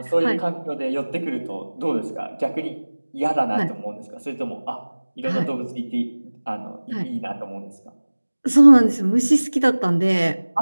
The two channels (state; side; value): inverted; both; correlation -1.00